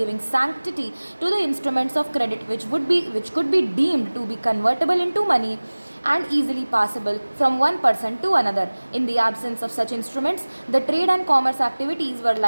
sanctity to the instruments of credit which could be deemed to be convertible into money and easily passable from one person to another. In the absence of such instruments, the trade and commerce activities were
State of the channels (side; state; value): both; inverted; correlation -1.00